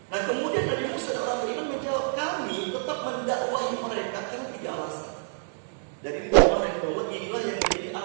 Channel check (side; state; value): left; silent; digital silence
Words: Nah kemudian Nabi Musa dan orang beriman menjawab, kami tetap mendakwahi mereka karena 3 alasan. Dari kemarin bahwa inilah yang menjadi